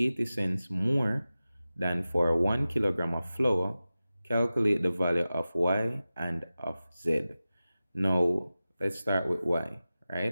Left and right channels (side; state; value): both; inverted; correlation -0.95